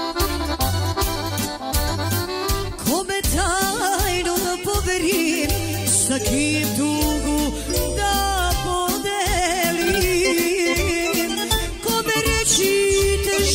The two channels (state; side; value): identical; both; correlation 1.00